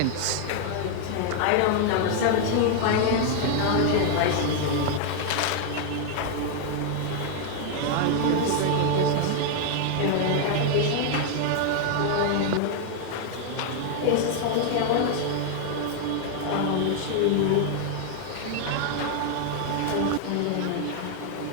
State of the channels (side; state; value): both; different; correlation 0.00